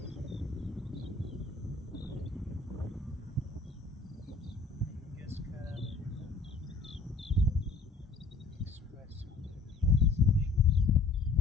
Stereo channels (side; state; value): right; quieter; 4.0 dB